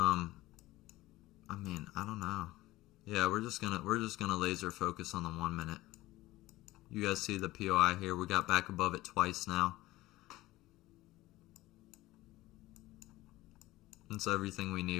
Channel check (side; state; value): right; quieter; 17.9 dB